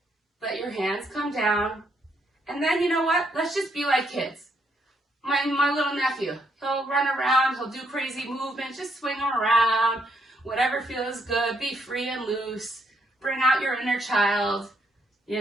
Let your hands come down. And then, you know what? Let's just be like kids. My little nephew, he'll run around, he'll do crazy movements, just swing him around, whatever feels good, be free and loose, bring out your inner child. You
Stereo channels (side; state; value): both; normal; correlation 0.73